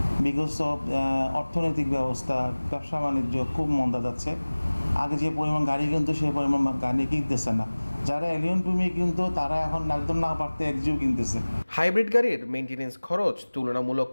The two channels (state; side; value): inverted; both; correlation -1.00